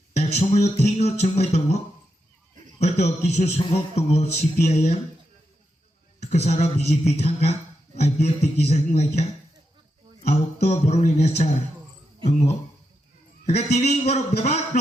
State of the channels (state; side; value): normal; both; correlation 0.85